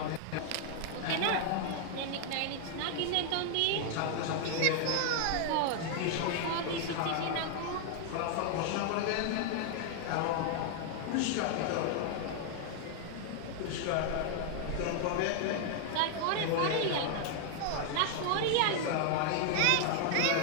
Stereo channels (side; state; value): both; different; correlation 0.00